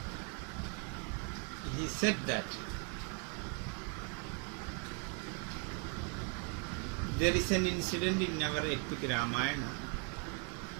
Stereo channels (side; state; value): left; quieter; 32.0 dB